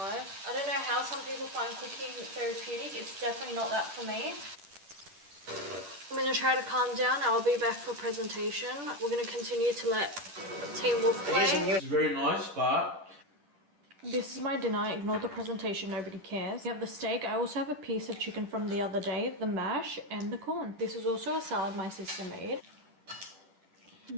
I don't know how some people find cooking therapeutic. It's definitely not that for me. I'm going to try to calm down. I'll be back for presentation. We're going to continue to let Team Wolf play. It's very nice, but This is my dinner. Ignore the presentation. Nobody cares. We have the steak. I also have a piece of chicken from the other day, the mash, and the corn. This is also a salad my sister made.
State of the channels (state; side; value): late; left; 10 ms